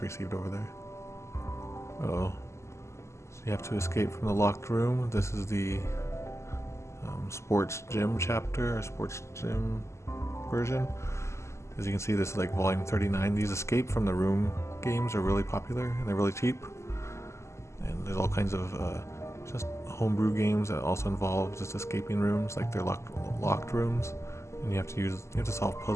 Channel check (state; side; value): late; right; 0.13 ms